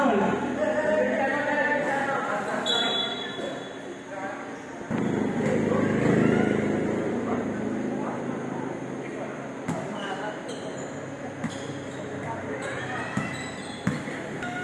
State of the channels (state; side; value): identical; both; correlation 1.00